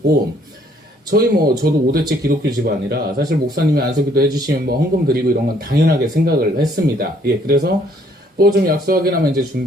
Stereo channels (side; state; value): both; normal; correlation 0.64